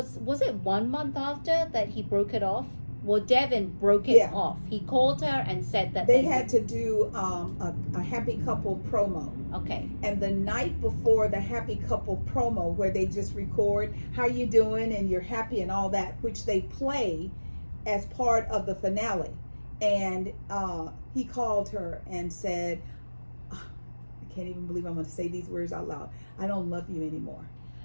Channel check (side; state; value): both; inverted; correlation -1.00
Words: it 1 month after that he broke it off? Well, Devin broke it off. He called her and said that they had to do a happy couple promo. Okay. And the night before the happy couple promo, where they just record how you doing and you're happy and all that, which they play as part of the finale. And he called her and said, I can't even believe I'm going to say these words out loud. I don't love you anymore.